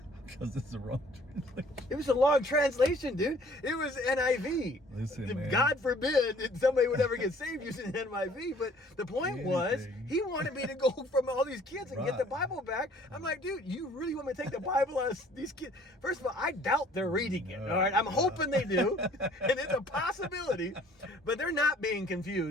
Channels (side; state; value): both; normal; correlation 0.55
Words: Because it's the wrong translation. It was a long translation, dude. It was NIV. Listen, man. God forbid that somebody would ever get saved using NIV. But the point was, he wanted me to go from all these kids and get the Bible back. I'm like, dude, you really want me to take the Bible out of these kids? First of all, I doubt they're reading it. All right, I'm hoping they do, and it's a possibility. But they're not being